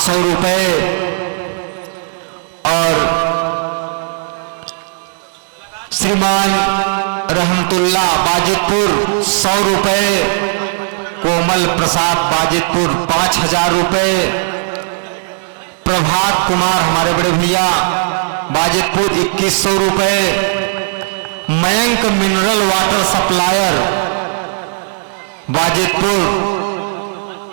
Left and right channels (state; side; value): silent; left; digital silence